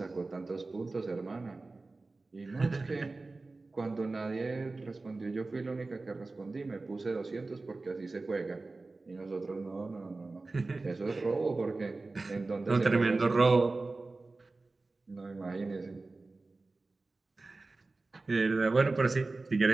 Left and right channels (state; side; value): quieter; left; 3.5 dB